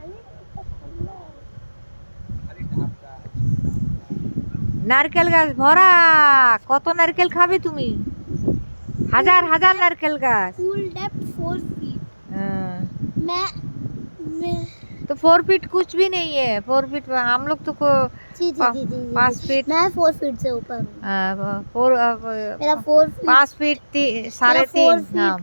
নারকেল গাছ ভরা, কত নারকেল খাবে তুমি? हजार हजार नारकेल गाछ। Full depth 4 feet। मैं तो 4 फीट कुछ भी नहीं है। 4 फीट हम लोग तो जी 5 फीट, मैं 4 फीट से ऊपर हूँ। मेरा 4 फीट 5 फीट 3.5 फीट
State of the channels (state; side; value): inverted; both; correlation -1.00